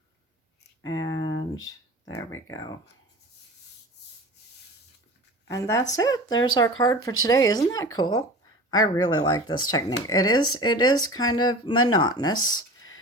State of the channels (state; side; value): normal; both; correlation 0.36